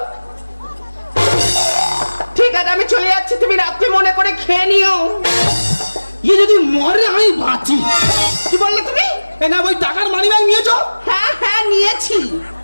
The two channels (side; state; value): both; inverted; correlation -1.00